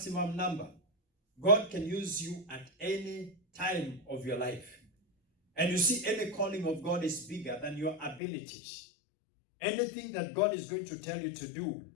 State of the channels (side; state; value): right; drops out; at 8.2 s